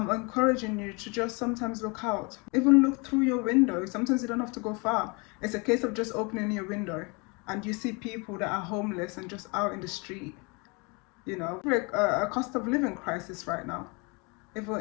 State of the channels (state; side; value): quieter; right; 30.0 dB